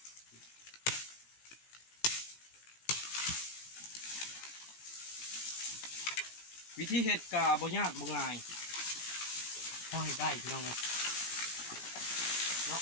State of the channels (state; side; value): late; right; 17 ms